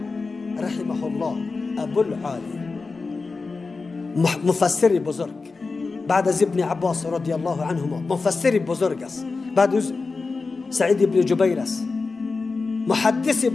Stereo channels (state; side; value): quieter; right; 4.1 dB